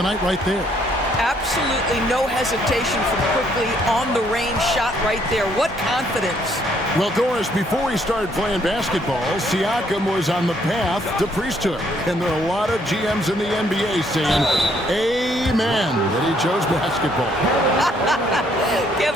night right there. Absolutely no hesitation from Quickly on the range shot right there. What confidence. Well, Doris, before he started playing basketball, Siakam was on the path to priesthood. And there are a lot of GMs in the NBA saying, amen, that he chose basketball.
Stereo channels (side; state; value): both; normal; correlation 0.67